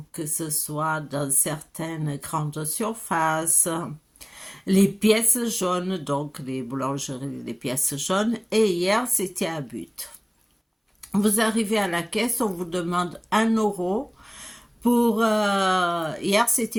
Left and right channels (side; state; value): both; identical; correlation 1.00